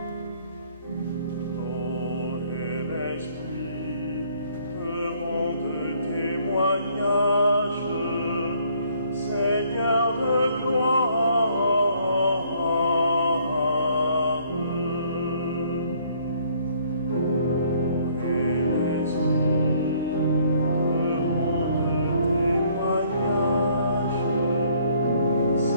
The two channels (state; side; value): inverted; both; correlation -0.63